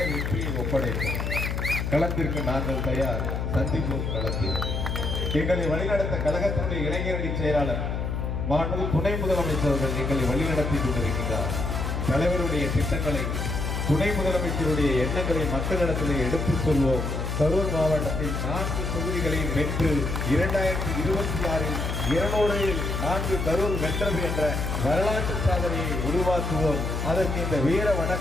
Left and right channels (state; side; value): noise; left; hum, 2 dB below the sound